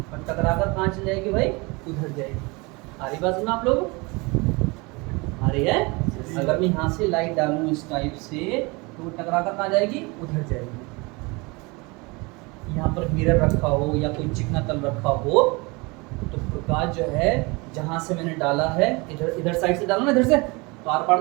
और टकराकर कहाँ चली जाएगी भाई? उधर जाएगी। आ रही बात में आप लोग? आ रही है? अगर मैं यहाँ से लाइट डालूँ इस टाइप से, तो वो टकराकर कहाँ जाएगी? उधर जाएगी। यहाँ पर मिरर रखा हो या कोई चिकना तल रखा हो, तो प्रकाश जो है जहाँ से मैंने डाला है, इधर साइड से डाला ना, इधर से, तो आर पार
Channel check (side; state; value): left; quieter; 26.5 dB